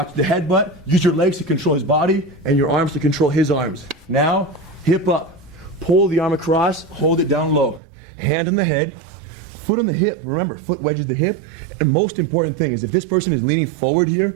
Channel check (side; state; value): left; drops out; at 7.8 s